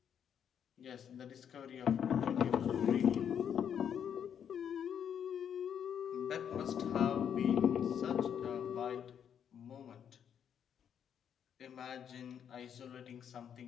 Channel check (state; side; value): quieter; right; 8.5 dB